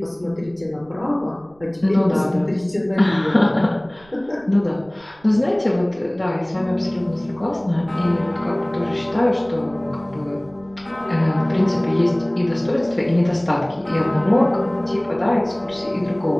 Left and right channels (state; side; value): noise; right; rumble, 29 dB below the sound